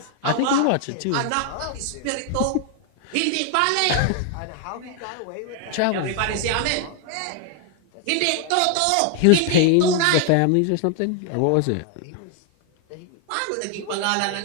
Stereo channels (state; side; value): different; both; correlation 0.00